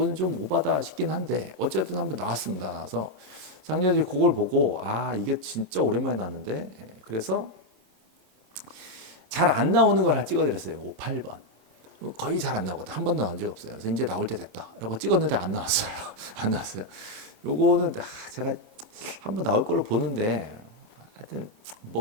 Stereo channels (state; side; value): late; left; 27 ms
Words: 좀 오바다 싶긴 한데 어쨌든 한번 나왔습니다. 나와서 작년에 그걸 보고 이게 진짜 오랜만에 나왔는데, 그래서 잘 안 나오는 걸 찍어드렸어요. 8번. 거의 잘 안 나오거든. 한 번 나온 적 없어요. 그래서 이제 나올 때 됐다라고 찍었는데 안 나왔어요. 안 나왔어요. 요거는 제가 한번 나올 걸로 보는데 하여튼